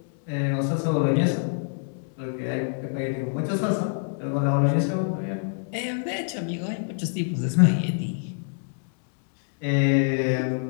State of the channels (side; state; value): right; silent; digital silence